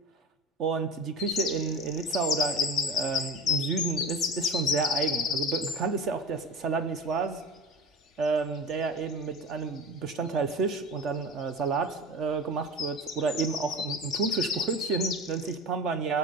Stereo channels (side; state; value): both; normal; correlation 0.32